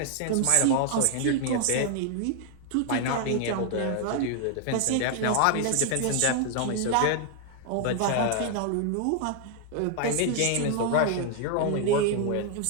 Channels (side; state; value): both; different; correlation 0.00